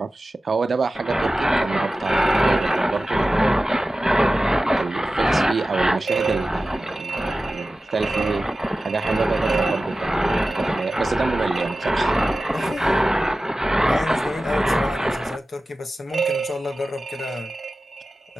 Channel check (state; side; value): normal; both; correlation 0.95